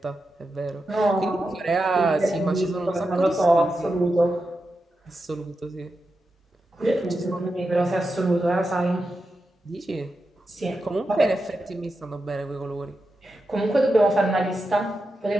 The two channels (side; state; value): both; normal; correlation 0.89